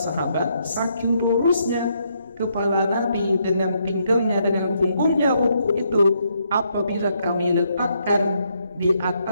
saking lurusnya kepala Nabi dengan pinggangnya dengan punggungnya ruku itu, apabila kami letakkan di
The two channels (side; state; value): both; inverted; correlation -0.75